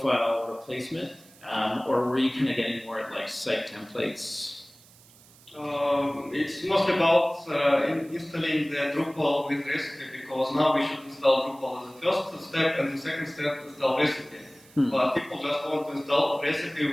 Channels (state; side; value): noise; right; hiss, 25 dB below the sound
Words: replacement, or were you kind of getting more at like site templates? It's mostly about installing the Drupal with recipe, because now we should install Drupal as the first step, and the second step install recipe. But people just want to install recipe